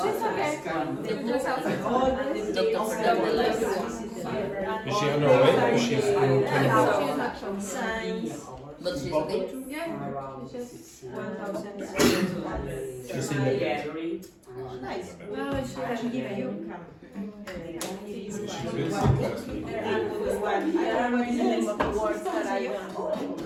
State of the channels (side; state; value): both; identical; correlation 1.00